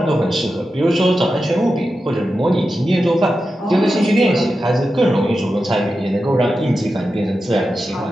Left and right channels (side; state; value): both; normal; correlation 0.91